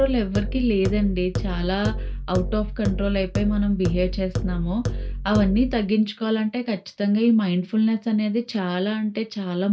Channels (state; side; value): identical; both; correlation 1.00